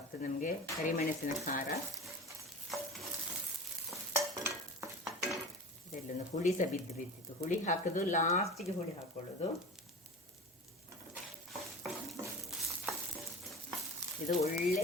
ನಮಗೆ, ಕರಿಮೆಣಸಿನ ಖಾರ. ಇದೆಲ್ಲೊಂದು ಹುಳಿ ಸಹ ಬಿದ್ದಿತ್ತು, ಹುಳಿ ಹಾಕೋದು ಲಾಸ್ಟಿಗೆ, ಹುಳಿ ಹಾಕೊಳ್ಳೋದು. ಇದು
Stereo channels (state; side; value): normal; both; correlation 0.34